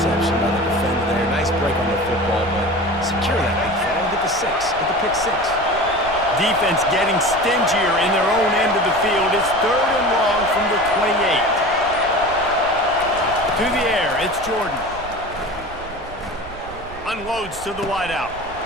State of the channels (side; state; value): right; noise; rumble, 16 dB below the sound